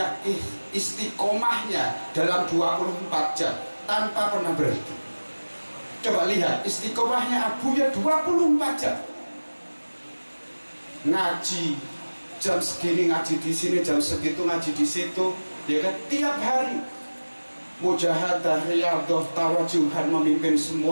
istiqomahnya dalam 24 jam tanpa pernah berhenti. Coba lihat istiqomahnya Abuya 24 jam. Ngaji jam segini, ngaji di sini, jam segitu ngaji di situ, ya kan, tiap hari. Mujahadah, riyadhah, tawajuhan, memimpin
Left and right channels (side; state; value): both; inverted; correlation -1.00